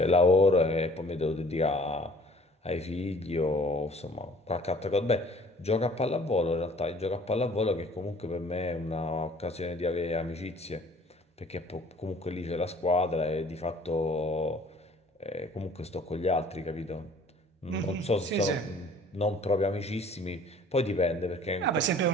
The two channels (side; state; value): both; normal; correlation 0.52